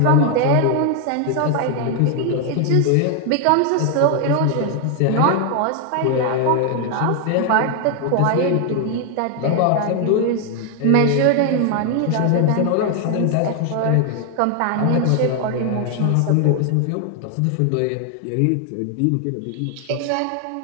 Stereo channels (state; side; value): different; both; correlation 0.00